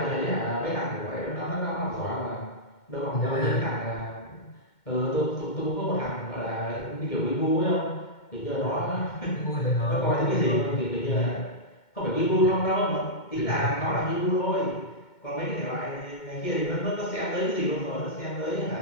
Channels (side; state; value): right; late; 2.2 ms